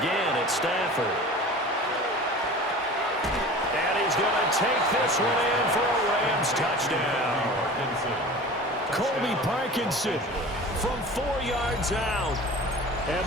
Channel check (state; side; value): normal; both; correlation 0.38